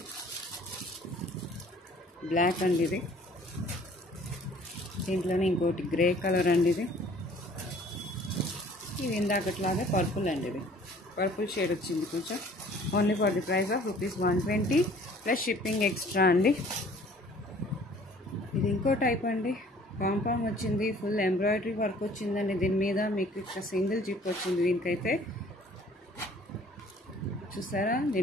బ్లాక్ అండి. ఇది దీంట్లోనే ఇంకోటి గ్రే కలర్ అండి. ఇది ఇందాకట్లాగే పర్పుల్ అండి. ఇది పర్పుల్ షేడ్ వచ్చింది కొంచెం. Only for the price of rupees 120 plus shipping extra అండి. ఇది ఇంకో టైప్ అండి. పాంపామ్ వచ్చింది, ఫుల్ ఎంబ్రాయిడరీ వర్క్ వచ్చిందండి. దీని మీద మీకు ఇక్కడ సింగిల్ జిప్ వచ్చింది. దీనికైతే చూసారా,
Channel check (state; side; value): normal; both; correlation 0.53